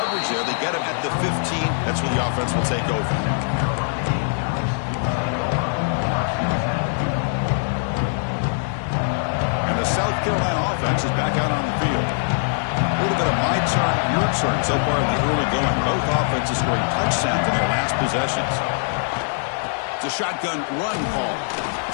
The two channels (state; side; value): silent; right; digital silence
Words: there. They get him at the 15. That's where the offense will take over. And the South Carolina offense is back out on the field. A little bit of my turn, your turn so far in the early going. Both offenses scoring touchdowns in their last possessions. It's a shotgun run call.